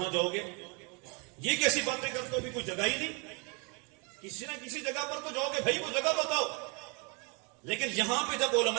جاؤ گے, یہ کیسی باتیں کرتے ہو بھی کوئی جگہ ہی نہیں, کسی نہ کسی جگہ پر تو جاؤ گے, بھائی وہ جگہ بتاؤ. لیکن یہاں پہ جب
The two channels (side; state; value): left; quieter; 33.3 dB